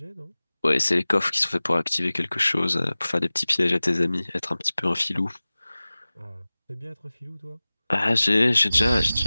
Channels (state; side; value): inverted; both; correlation -0.98